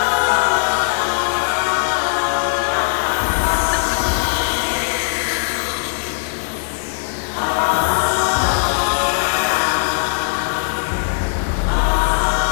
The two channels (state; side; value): silent; right; 67 dB below the other